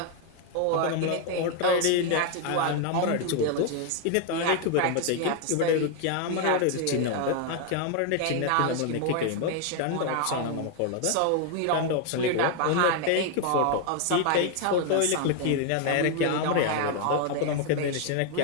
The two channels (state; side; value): different; both; correlation 0.01